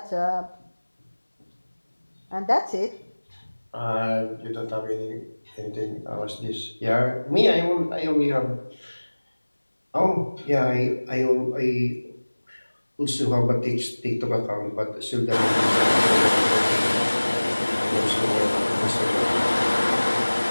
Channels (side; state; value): both; inverted; correlation -1.00